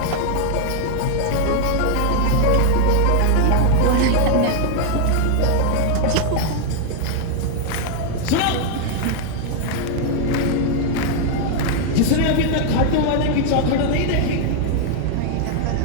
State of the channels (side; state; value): both; different; correlation 0.00